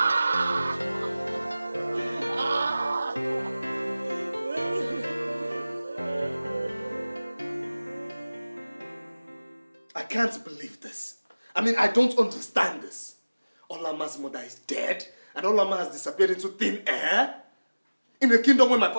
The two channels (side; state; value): both; inverted; correlation -0.99